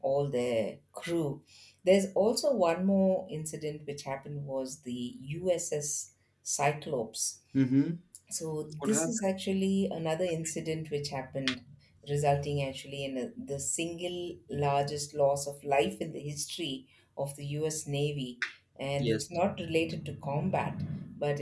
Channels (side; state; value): both; identical; correlation 1.00